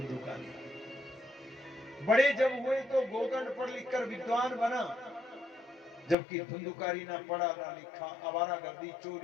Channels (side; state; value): right; drops out; at 6.2 s